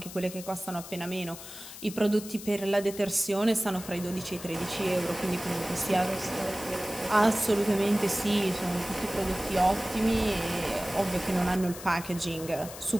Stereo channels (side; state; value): left; noise; hiss, 13 dB below the sound